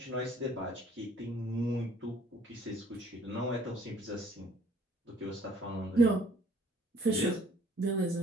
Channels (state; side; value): normal; both; correlation 0.58